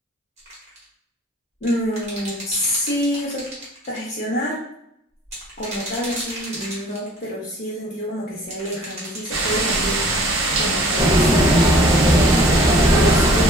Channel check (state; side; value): normal; both; correlation 0.52